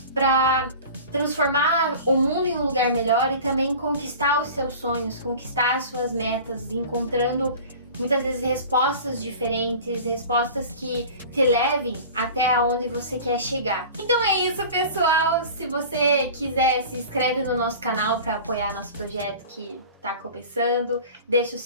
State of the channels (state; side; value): inverted; both; correlation -0.39